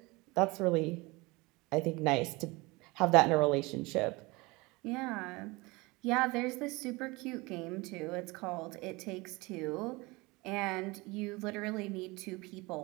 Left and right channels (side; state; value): left; quieter; 24.0 dB